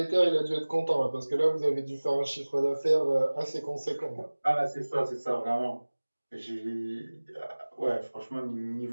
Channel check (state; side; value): inverted; both; correlation -1.00